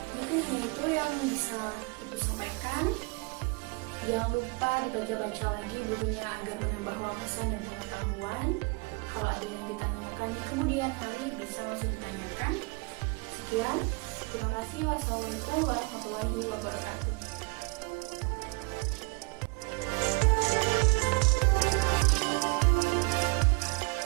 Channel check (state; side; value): quieter; left; 29.0 dB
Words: Mungkin itu yang bisa Ibu sampaikan. Jangan lupa dibaca-baca lagi bukunya agar menambah wawasan dan pengetahuan. Kalau ada yang ditanyakan di kemudian hari, bisa langsung ditanyakan. Sekian, terima kasih. Wassalamualaikum warahmatullahi wabarakatuh.